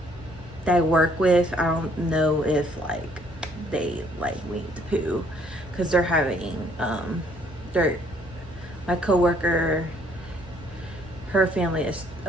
work with, I don't know if like they like Winnie the Pooh, because they're having my coworker, her family is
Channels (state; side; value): normal; both; correlation 0.64